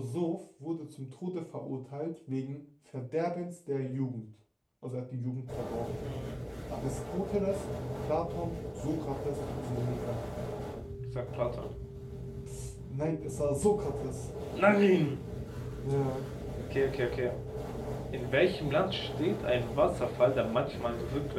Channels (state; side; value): identical; both; correlation 1.00